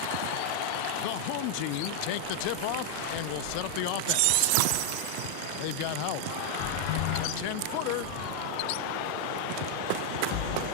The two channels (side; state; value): both; different; correlation 0.00